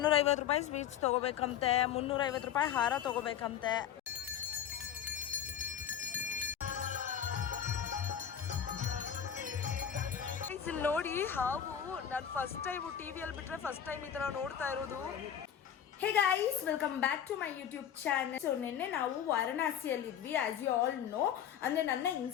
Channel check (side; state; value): right; quieter; 9.2 dB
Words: ರೂಪಾಯಿ sweets ತೊಗೋಬೇಕಂತೆ, 350 ರೂಪಾಯಿ ಹಾರ ತೊಗೋಬೇಕಂತೆ. ನೋಡಿ ಹಾವು ನಾನು ಫಸ್ಟ್ ಟೈಮ್ ಟಿವಿಯಲ್ಲಿ ಬಿಟ್ರೆ ಫಸ್ಟ್ ಟೈಮ್ ಈ ತರ ನೋಡ್ತಾ ಇರೋದು. Hey guys, welcome back to my YouTube channel. So ನಿನ್ನೆ ನಾವು ವಾರಣಾಸಿಯಲ್ಲಿದ್ವಿ. ಆಸ್ ಯು ಆಲ್ ನೋ, ಅಂದರೆ ನನ್ನ